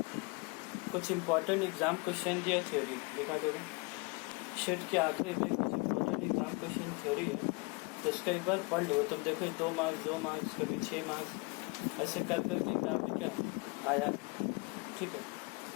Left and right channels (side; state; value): right; quieter; 29.0 dB